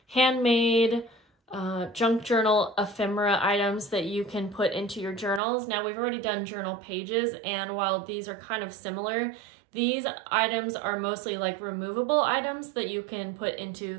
handmade junk journal ephemera items that you can put into your journals. Now we've already done journal pages, and while these are kind of similar, these items are mostly like removable items that you can put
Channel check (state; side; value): drops out; left; at 5.4 s